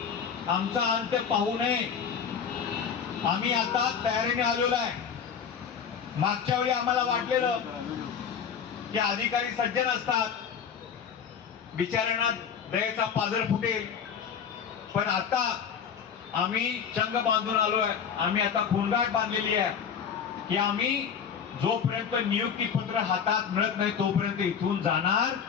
आमचा अंत पाहू नये. आम्ही आता तयारीने आलेलो आहे. मागच्या वेळी आम्हाला वाटलेलं की अधिकारी सज्जन असतात, बिचाऱ्यांना दयेचा पाझर फुटेल, पण आता आम्ही चंग बांधून आलोय. आम्ही आता खूणगाठ बांधलेली आहे की आम्ही जोपर्यंत नियुक्ती पत्र हातात मिळत नाही तोपर्यंत इथून जाणार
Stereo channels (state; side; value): quieter; right; 7.3 dB